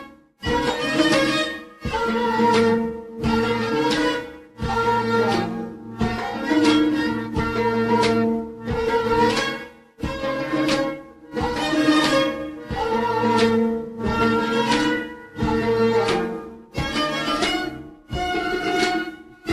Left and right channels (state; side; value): identical; both; correlation 1.00